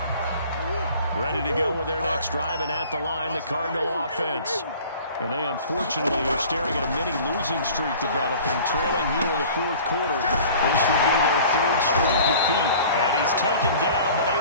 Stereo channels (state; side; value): inverted; both; correlation -0.46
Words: Ready to go with their next drive, and at the line, the Cardinal offense. And they unfortunately are staring at a mini losing streak developing, trailing here in the 4th quarter. This would be their 3rd straight defeat. And he's taken down, but